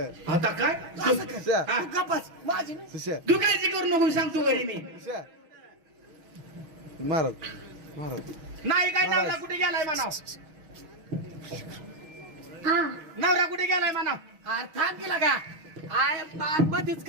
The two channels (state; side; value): late; left; 6.3 ms